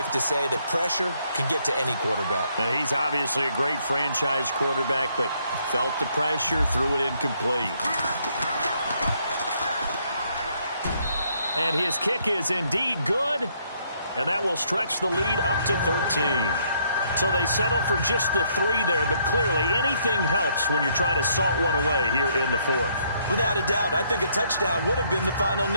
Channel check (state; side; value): inverted; both; correlation -0.70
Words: to say that pressure can get to any quarterback. He's obviously a great franchise quarterback, but felt the pressure, threw it incomplete. And his kick is indeed good, and that will stretch the lead up to 13. So they settle for just the 3 there, but clearly anything helps when you're trying to salt one away here in the 4th. Without a doubt, I think a touchdown would have been the final